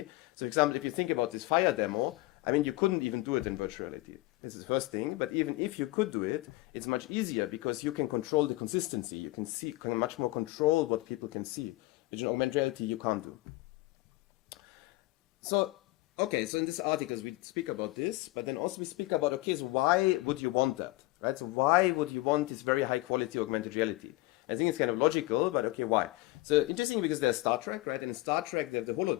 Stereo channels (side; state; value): right; quieter; 20.2 dB